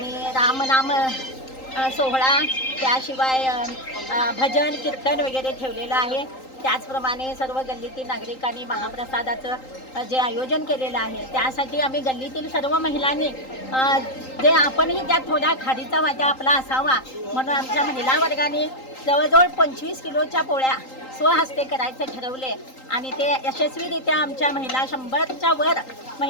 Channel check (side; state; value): right; late; 3.8 ms